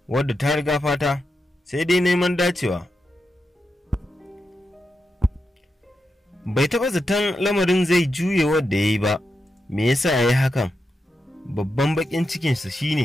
wadda ta riga fata, sai dai neman dacewa. Bai taɓa zaton lamarin zai juye wadda ya yi ba. Me yasa ya yi hakan? Babban baƙin cikinsa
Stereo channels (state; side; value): normal; both; correlation 0.87